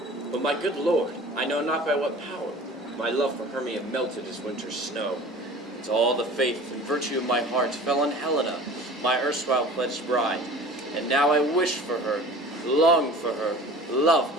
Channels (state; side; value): normal; both; correlation 0.43